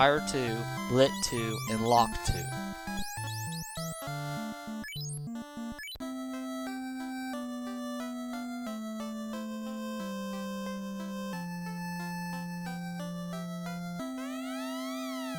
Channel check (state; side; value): identical; both; correlation 1.00